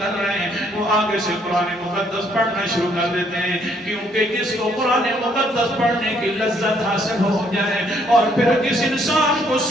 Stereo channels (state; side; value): normal; both; correlation 0.67